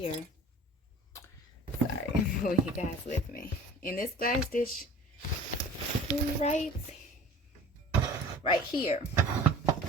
sorry, will you guys with me? In this glass dish, right here,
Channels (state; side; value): normal; both; correlation 0.44